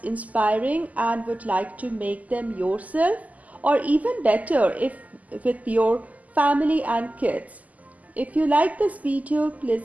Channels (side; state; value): left; late; 0.076 ms